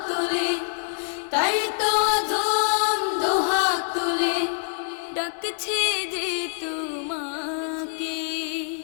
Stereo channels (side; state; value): right; silent; 62 dB below the other